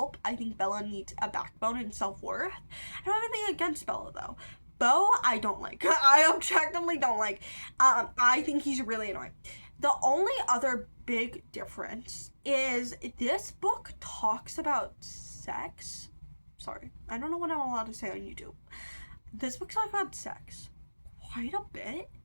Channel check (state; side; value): inverted; both; correlation -1.00